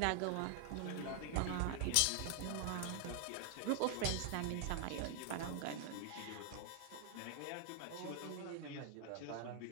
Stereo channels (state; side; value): different; both; correlation 0.00